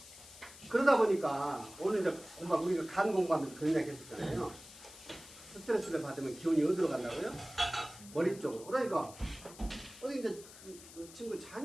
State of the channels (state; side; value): noise; left; hiss, 18 dB below the sound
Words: 그러다 보니까 오늘 이제 우리가 간 공부하면서 그런 이야기 했었잖아요. 스트레스를 받으면 기운이 어디로 간다고요? 머리 쪽으로. 그러니까 어디 이제 그 친구